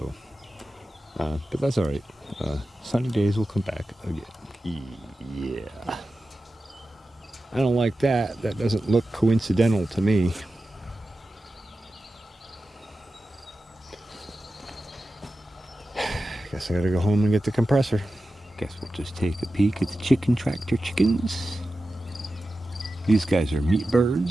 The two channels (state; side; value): normal; both; correlation 0.93